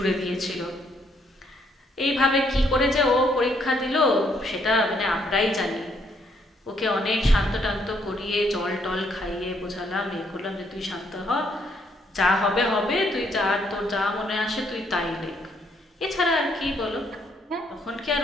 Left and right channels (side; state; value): both; normal; correlation 0.71